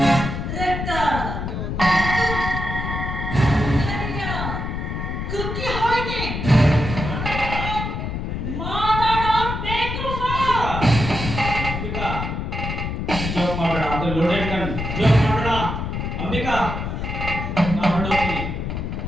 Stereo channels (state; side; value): noise; left; rumble, 4 dB below the sound